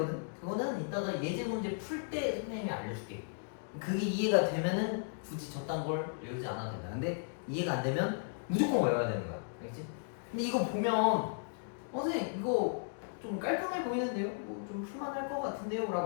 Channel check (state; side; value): silent; right; digital silence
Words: 그거는 이따가 예제 문제 풀 때 선생님이 알려줄게. 그게 이해가 되면은 굳이 저딴 걸 외우지 않아도 된다. 근데 이해가 안 되면 무조건 외워야 되는 거야. 알겠지? 근데 이거 보면 선생님 이거 좀 깔끔해 보이는데요? 뭐 좀 풀만할 것 같은데요?